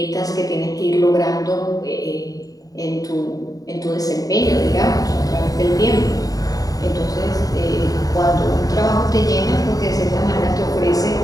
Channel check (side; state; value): right; late; 0.18 ms